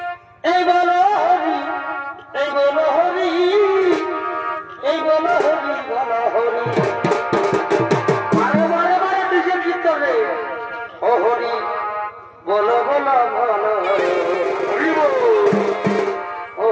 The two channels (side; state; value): both; identical; correlation 1.00